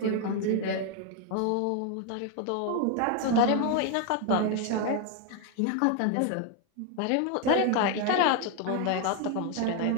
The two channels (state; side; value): different; both; correlation 0.01